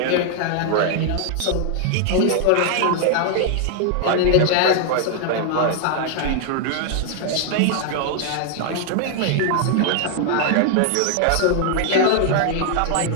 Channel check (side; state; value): both; different; correlation 0.00